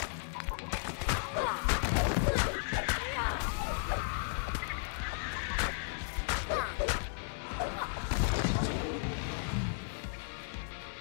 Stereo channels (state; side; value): silent; right; digital silence